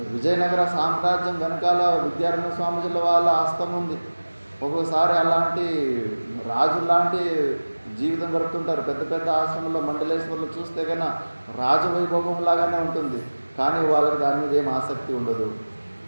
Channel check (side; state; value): both; inverted; correlation -1.00